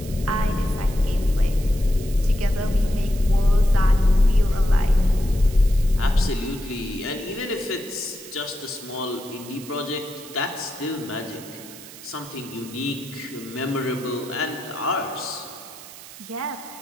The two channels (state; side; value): noise; right; hiss, 16 dB below the sound